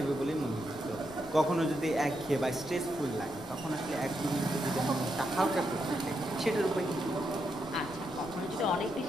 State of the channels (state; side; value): noise; left; rumble, 19 dB below the sound